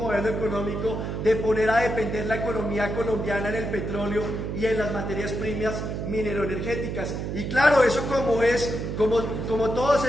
económico de poner a depender la economía colombiana en el petróleo y en las materias primas mineroenergéticas. Y claro, eso como todos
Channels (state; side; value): noise; right; hum, 4 dB below the sound